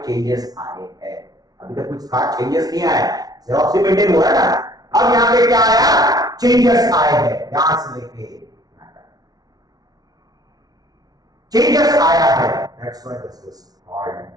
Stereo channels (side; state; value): left; late; 0.19 ms